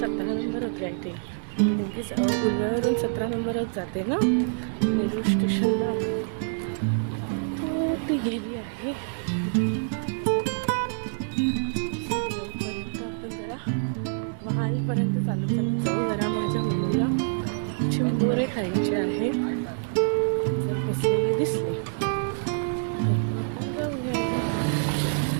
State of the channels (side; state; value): left; silent; digital silence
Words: नंबर होती आय थिंक, कारण की उलव्यावरून 17 नंबरच जाते ना नेरूळ स्टेशनला. तो ती गेली आहे. आपण जरा वहालपर्यंत चालत जाऊ. जरा माझ्या मुलीला चिंबोरे खायचे आहे. जर बसलेले दिसले